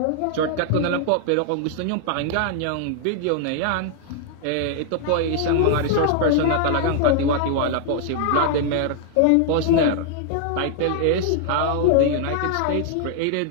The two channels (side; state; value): both; different; correlation 0.00